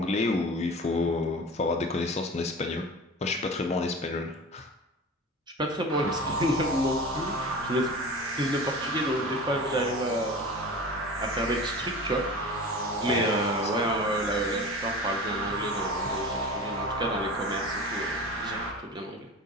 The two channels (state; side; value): normal; both; correlation 0.34